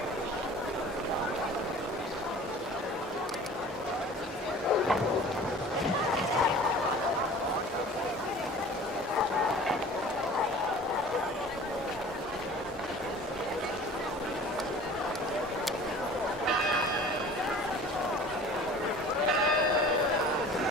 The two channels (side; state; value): both; normal; correlation 0.44